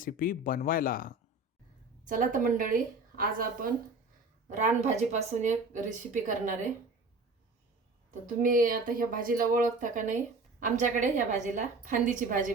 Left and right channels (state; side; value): quieter; left; 3.1 dB